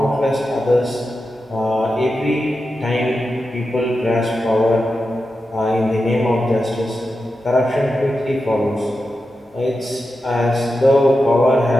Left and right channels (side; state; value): both; normal; correlation 0.90